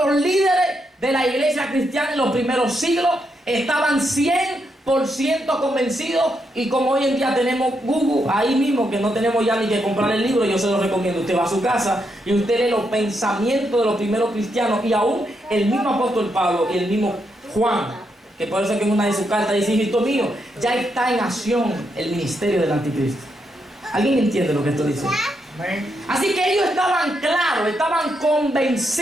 los líderes de la iglesia cristiana en los primeros siglos estaban 100% convencidos, y como hoy en día tenemos Google ahí mismo, que no tenemos ya ni que comprar el libro, yo se lo recomiendo. Usted va a su casa y usted lee los pensamientos de los primeros cristianos, y aún el mismo apóstol Pablo y el mismo Juan, que por eso es que en una de sus cartas dice: hijito mío, ya está en acción el ministerio del anticristo. ¿Alguien entiende lo que esto dice? Así que ellos estaban claros, estaban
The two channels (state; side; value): normal; both; correlation 0.80